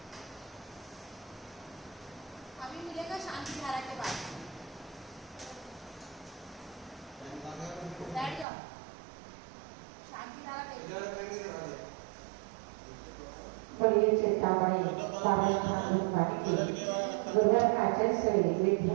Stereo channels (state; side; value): drops out; left; at 8.5 s